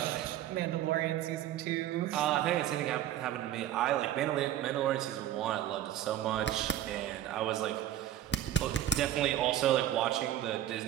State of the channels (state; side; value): quieter; left; 12.0 dB